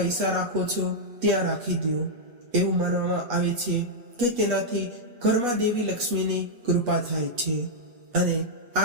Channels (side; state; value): left; late; 8.3 ms